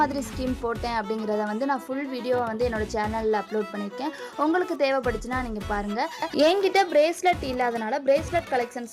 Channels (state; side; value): identical; both; correlation 1.00